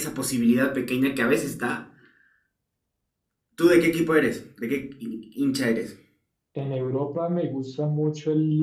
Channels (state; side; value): identical; both; correlation 1.00